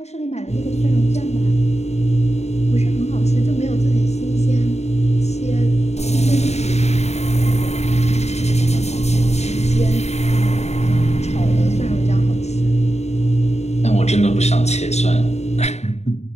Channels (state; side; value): late; right; 0.32 ms